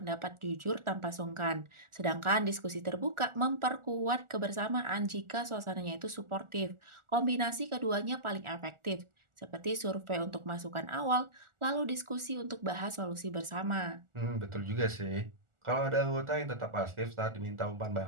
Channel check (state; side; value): late; left; 1.4 ms